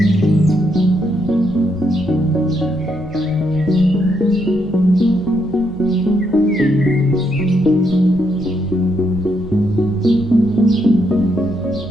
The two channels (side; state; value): right; noise; hum, 20 dB below the sound